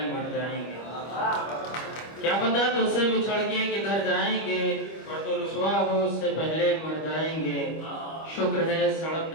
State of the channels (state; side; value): late; right; 25 ms